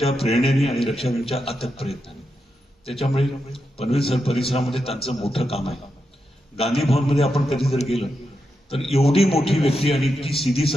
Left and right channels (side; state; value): both; normal; correlation 0.86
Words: प्रेरणेने आणि रक्षाबेनच्या अथक प्रयत्नाने. त्याच्यामुळे पनवेल परिसरामध्ये त्यांचं मोठं काम आहे. गांधी भवनमध्ये आपण कधी जर गेलं तर एवढी मोठी व्यक्ती आणि इतकी सीधी